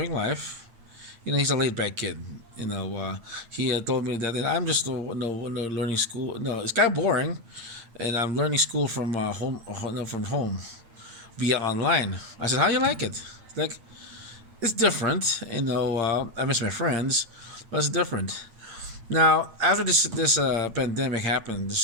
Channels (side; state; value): left; late; 8.9 ms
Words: life." He's a laid back kid. He told me that I'm just learning school. No, it's kind of boring, and I'm learning school from home, no, from home via online. I said, "How do you like it?" Like, it's different. I miss my friends, but it's different. Now, after this pandemic